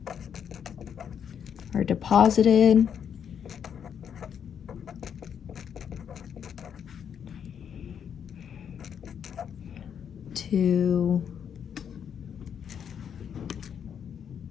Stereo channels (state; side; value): quieter; right; 8.1 dB